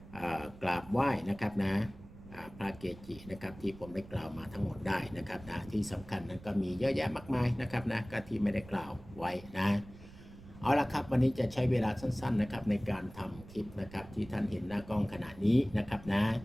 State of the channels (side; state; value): right; noise; rumble, 18 dB below the sound